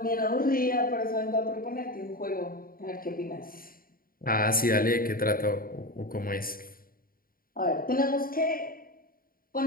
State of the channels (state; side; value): late; right; 0.42 ms